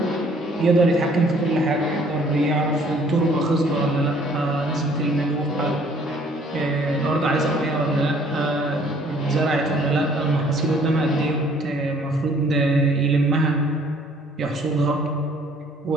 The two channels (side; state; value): both; normal; correlation 0.59